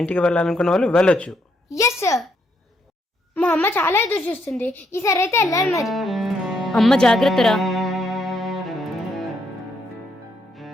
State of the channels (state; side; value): normal; both; correlation 0.75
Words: ఇంటికి వెళ్ళాలనుకున్న వాళ్ళు వెళ్ళొచ్చు. Yes sir. మా అమ్మ చాలా ఎదురు చూస్తుంది. ఈసారి అయితే వెళ్ళాలి మరి. అమ్మ జాగ్రత్తరా.